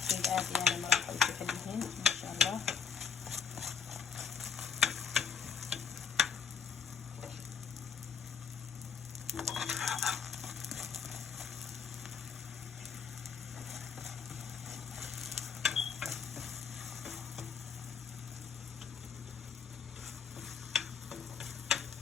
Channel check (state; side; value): quieter; right; 6.6 dB